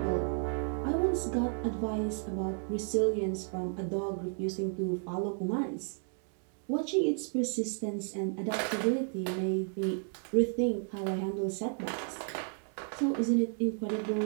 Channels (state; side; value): silent; left; 56 dB below the other